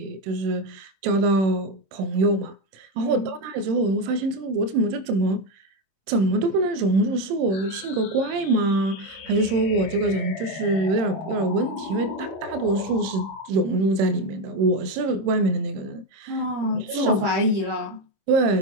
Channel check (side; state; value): left; late; 26 ms